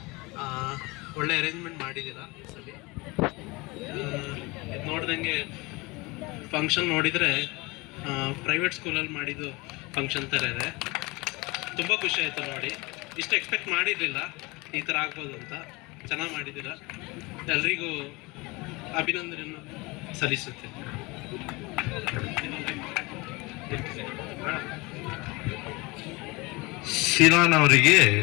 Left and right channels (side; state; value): right; quieter; 24.5 dB